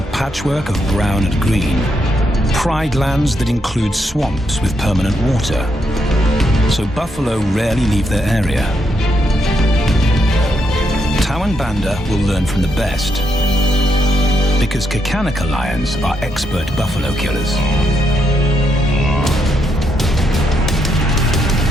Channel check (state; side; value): normal; both; correlation 0.78